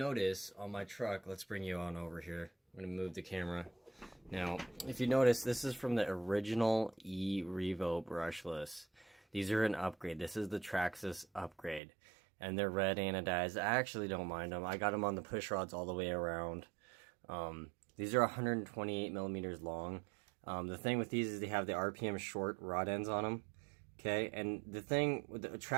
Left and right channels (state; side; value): drops out; left; at 11.8 s